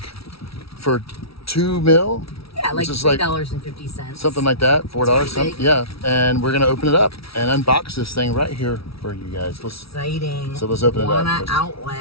for $2 million. Yeah, like $3.50. Something like that, $4. Big. Yeah, and we're gonna open it up and unbox this thing right here for you guys. Exciting. So let's open it up. Wana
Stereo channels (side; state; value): right; late; 0.76 ms